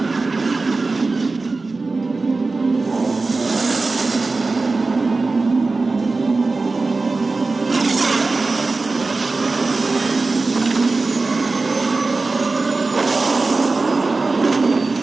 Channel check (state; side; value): quieter; left; 3.7 dB